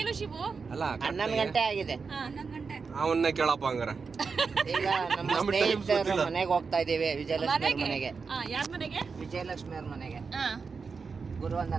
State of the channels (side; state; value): left; quieter; 5.1 dB